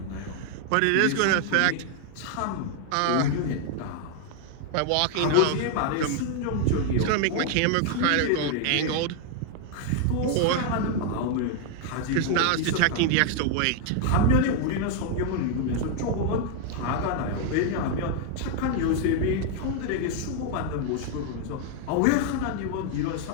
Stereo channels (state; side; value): different; both; correlation 0.00